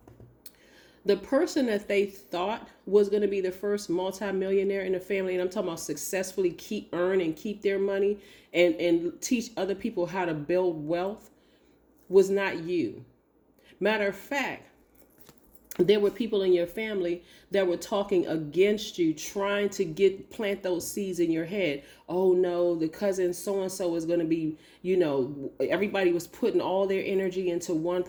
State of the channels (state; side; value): identical; both; correlation 1.00